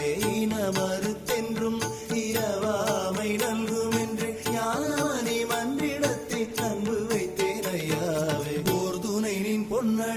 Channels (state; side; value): identical; both; correlation 1.00